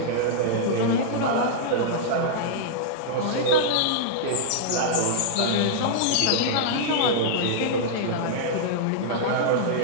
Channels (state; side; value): different; both; correlation -0.02